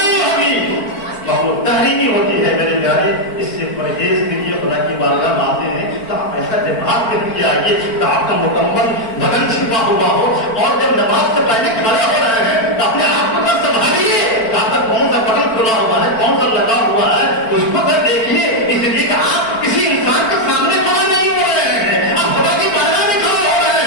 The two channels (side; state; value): right; late; 4.5 ms